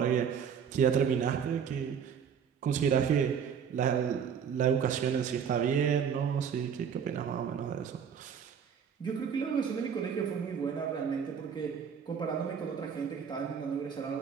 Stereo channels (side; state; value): left; quieter; 7.4 dB